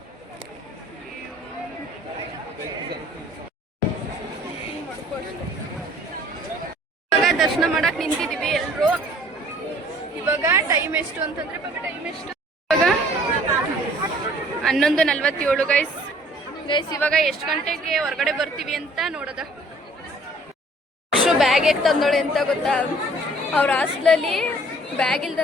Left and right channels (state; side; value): normal; both; correlation 0.55